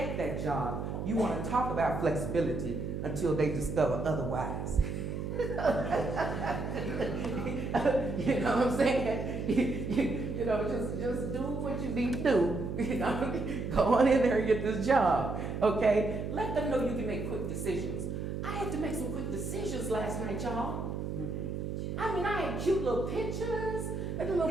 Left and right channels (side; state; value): right; noise; hum, 4 dB below the sound